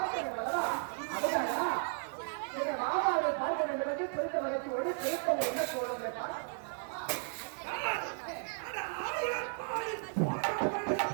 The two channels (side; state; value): left; silent; 55 dB below the other